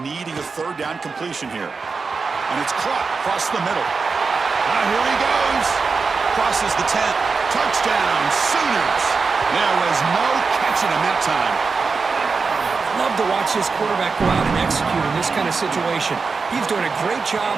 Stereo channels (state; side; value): quieter; left; 4.7 dB